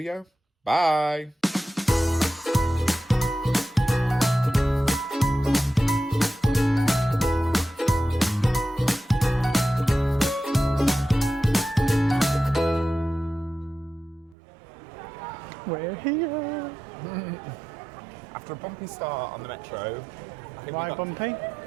Bye! We're here. After a bumpy start on the metro, I think Why bumpy?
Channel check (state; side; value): drops out; left; at 14.4 s